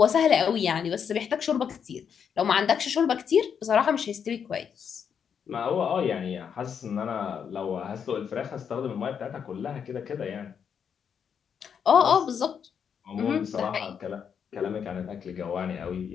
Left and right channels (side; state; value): right; quieter; 7.4 dB